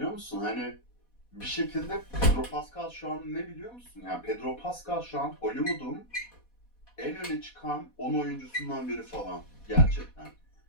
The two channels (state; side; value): late; right; 4.1 ms